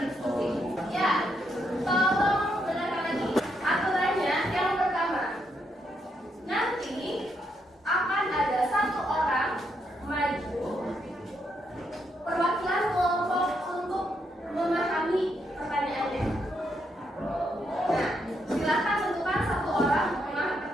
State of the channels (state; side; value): normal; both; correlation 0.78